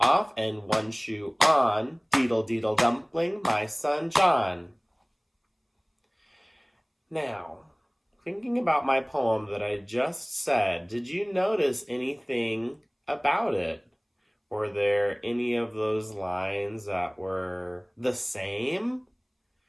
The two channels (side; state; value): both; identical; correlation 1.00